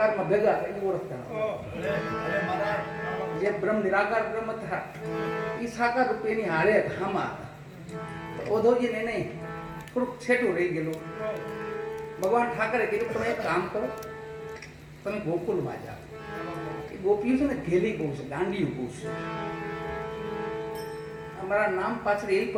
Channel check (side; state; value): both; identical; correlation 1.00